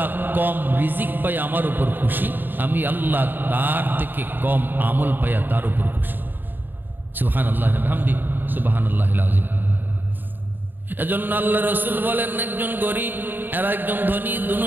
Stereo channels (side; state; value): left; late; 0.092 ms